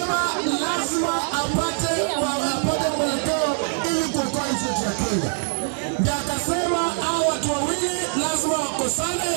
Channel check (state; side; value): silent; left; 56 dB below the other